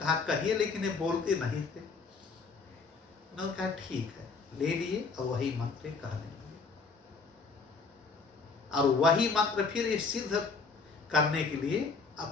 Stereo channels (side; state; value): right; quieter; 4.5 dB